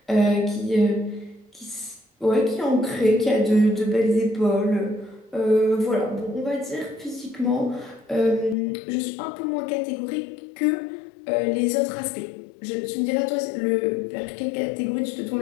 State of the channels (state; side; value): drops out; right; at 8.6 s